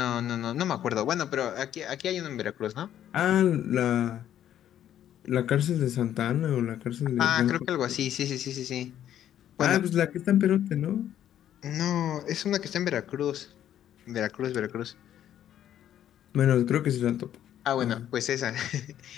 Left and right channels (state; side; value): quieter; right; 10.9 dB